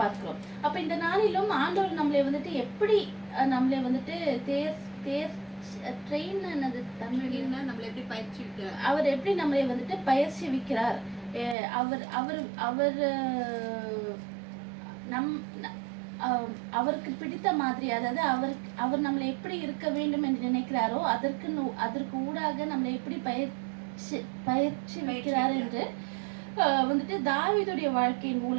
பார்க்கிறோம். அப்ப இந்த நாளிலும் ஆண்டவர் நம்மளை வந்துட்டு எப்படி நம்மளை வந்துட்டு அவர் எப்படி நம்மளை வந்துட்டு பயிற்சி வைக்கிறார். அவருக்கு பிடித்த மாதிரி, அதாவது அவர் நம்மளை எப்படி இருக்க வேண்டும் என்று நினைக்கிறாரோ அதற்கு ஊடாக நம்மளை எப்படி பயிற்சி வைக்கிறார் என்று வந்துட்டு தாவீதுடைய வாழ்க்கையின்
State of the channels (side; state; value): left; drops out; at 11.6 s